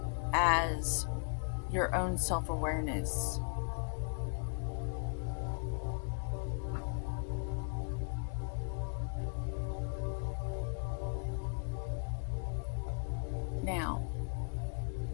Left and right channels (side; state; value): right; silent; 53 dB below the other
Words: as your own self-awareness. Now,